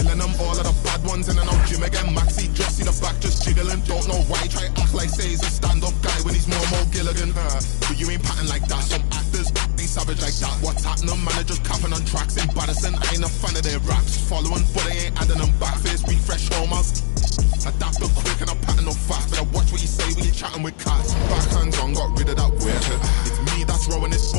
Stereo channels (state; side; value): silent; right; 66 dB below the other